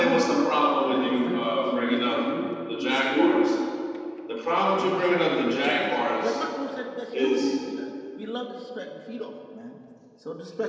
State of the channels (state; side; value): identical; both; correlation 1.00